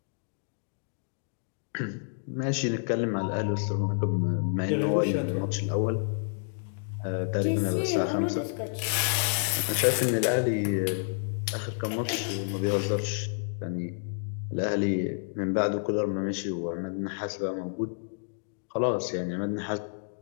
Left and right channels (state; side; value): silent; right; digital silence